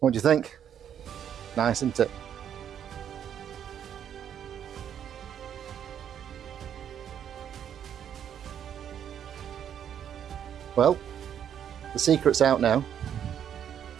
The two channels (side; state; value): left; quieter; 9.2 dB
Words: do you think? Nice, isn't it? Well, the secret's out now.